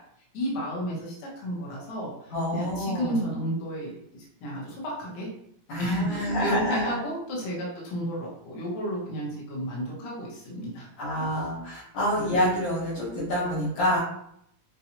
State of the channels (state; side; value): late; right; 17 ms